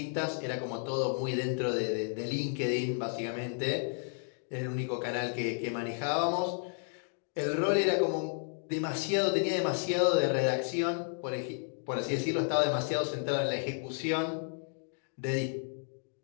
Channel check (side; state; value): right; silent; 56 dB below the other